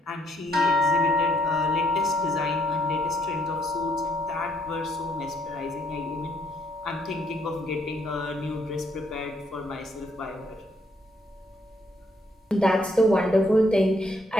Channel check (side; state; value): both; normal; correlation 0.70